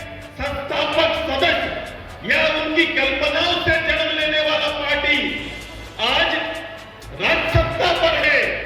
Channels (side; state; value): both; identical; correlation 1.00